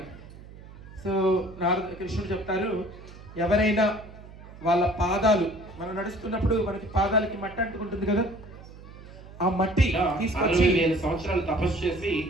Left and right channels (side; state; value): right; noise; hum, 18 dB below the sound